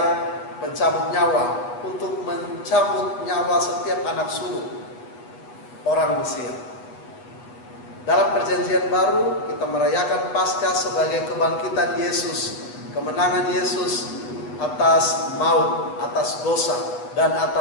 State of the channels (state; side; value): late; right; 8.4 ms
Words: pencabut nyawa untuk mencabut nyawa setiap anak sulung orang Mesir. Dalam perjanjian baru kita merayakan Paskah sebagai kebangkitan Yesus, kemenangan Yesus atas maut, atas dosa, dan